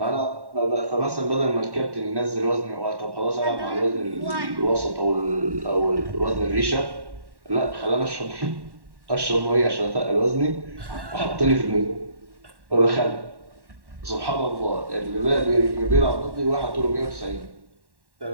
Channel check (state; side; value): late; left; 1.1 ms